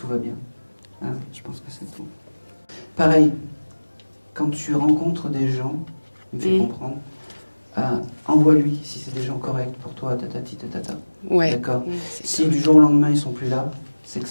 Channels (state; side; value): inverted; both; correlation -1.00